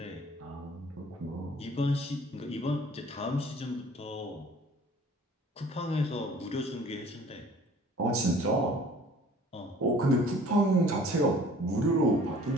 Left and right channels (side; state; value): both; normal; correlation 0.50